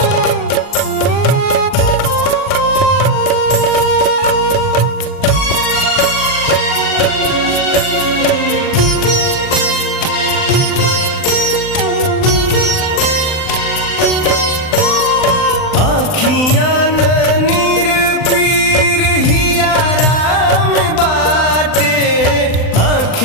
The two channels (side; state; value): right; late; 39 ms